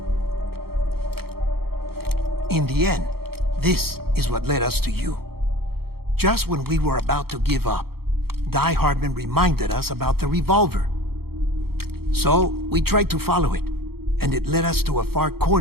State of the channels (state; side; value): late; left; 0.95 ms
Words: In the end, this is what led us to you. Just when we were about to give up, Die Hartman reminded us about the revolver. So, we tried to follow it, and it led us to a far